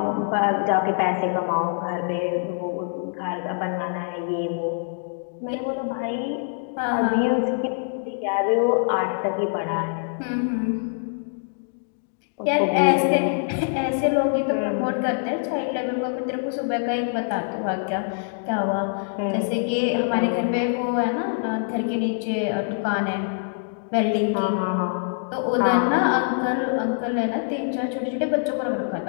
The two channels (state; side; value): silent; right; digital silence